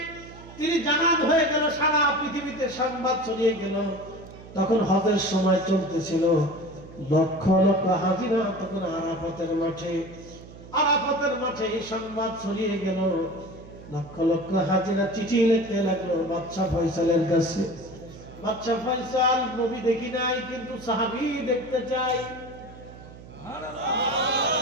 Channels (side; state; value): right; noise; hum, 17 dB below the sound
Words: তিনি জানান হয়ে গেল, সারা পৃথিবীতে সংবাদ ছড়িয়ে গেল। তখন হজের সময় চলতেছিল, লক্ষ লক্ষ হাজিরা তখন আরাফাতের মাঠে, আরাফাতের মাঠে এই সংবাদ ছড়িয়ে গেল। লক্ষ লক্ষ হাজিরা চিঠি লিখতে লাগলো বাদশা ফয়সালের কাছে। বাদশা ফয়সাল, নবী দেখি নাই কিন্তু সাহাবী দেখতে চাই।